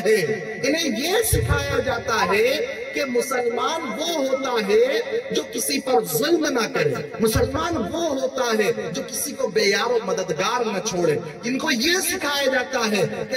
انہیں یہ سکھایا جاتا ہے کہ مسلمان وہ ہوتا ہے جو کسی پر ظلم نہ کرے، مسلمان وہ ہوتا ہے جو کسی کو بے یار و مددگار نہ چھوڑے۔ ان کو یہ سکھایا جاتا ہے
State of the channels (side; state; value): both; identical; correlation 1.00